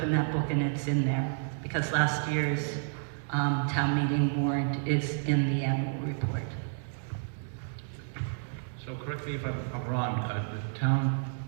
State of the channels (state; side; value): silent; left; digital silence